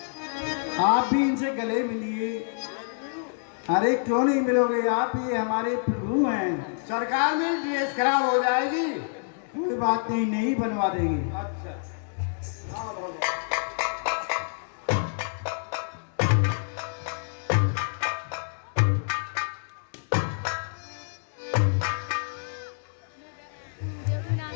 आप भी इनसे गले मिलिए। अरे क्यों नहीं मिलोगे, आप ये हमारे प्रभु हैं। सरकार में ड्रेस खराब हो जाएगी। कोई बात नहीं, नहीं बनवा देंगे। अच्छा, हाँ भगवान।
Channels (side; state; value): right; silent; digital silence